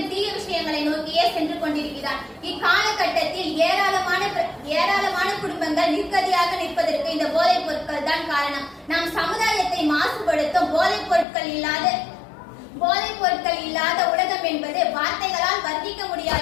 தீய விஷயங்களை நோக்கியே சென்று கொண்டிருக்கிறான். இக்காலகட்டத்தில் ஏராளமான குடும்பங்கள் நிர்கதியாக நிற்பதற்கு இந்த போதைப் பொருட்கள் தான் காரணம். நம் சமுதாயத்தை மாசுபடுத்தும் போதைப் பொருட்கள் இல்லாத உலகம் என்பது வார்த்தைகளால் வர்ணிக்க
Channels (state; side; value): drops out; right; at 11.2 s